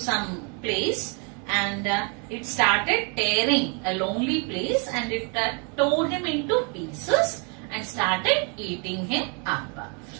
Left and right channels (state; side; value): quieter; left; 35.2 dB